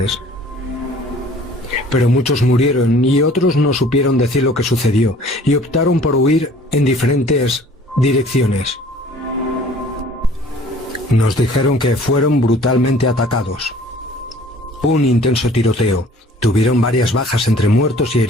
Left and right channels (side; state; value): both; normal; correlation 0.51